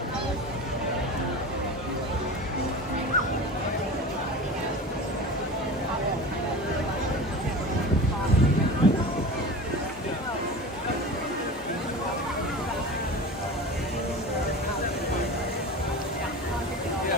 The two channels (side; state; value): both; normal; correlation 0.32